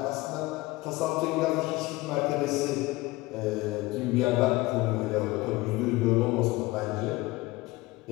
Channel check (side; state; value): right; quieter; 20.6 dB